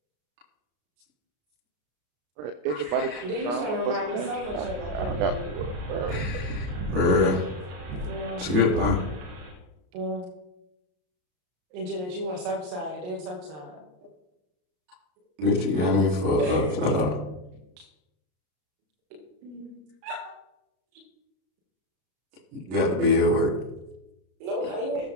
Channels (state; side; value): late; left; 32 ms